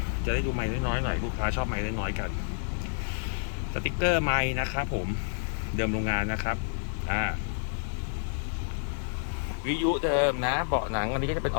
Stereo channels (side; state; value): right; silent; digital silence